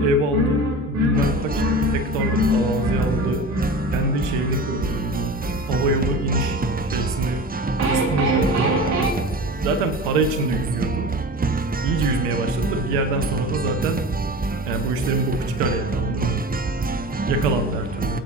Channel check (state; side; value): normal; both; correlation 0.34